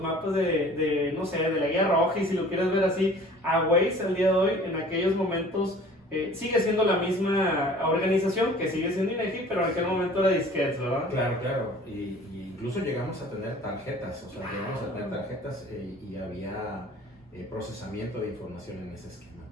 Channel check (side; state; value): both; normal; correlation 0.48